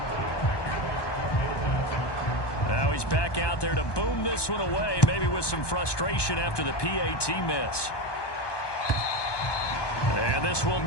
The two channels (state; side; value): late; right; 1.2 ms